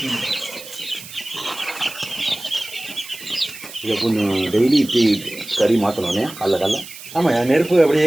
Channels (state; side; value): noise; right; hiss, 15 dB below the sound